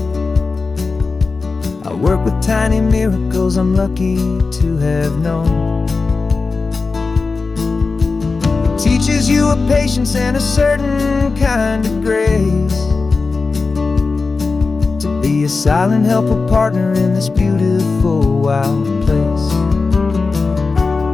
I work with tiny miracles I'm lucky to have known. Teaches you a patience and a certain kind of grace, to be a silent, helpful partner in this beautiful, wild place.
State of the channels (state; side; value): quieter; right; 4.2 dB